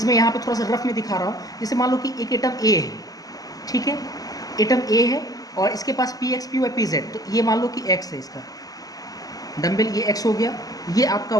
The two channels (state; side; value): late; right; 0.18 ms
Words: यहाँ पे थोड़ा सा रफ में दिखा रहा हूँ। जैसे मान लो कि एक एटम ए है, ठीक है, एटम ए है और इसके पास px py pz, तो ये मान लो कि x है, इसका डम्बल ये x हो गया, ये आपका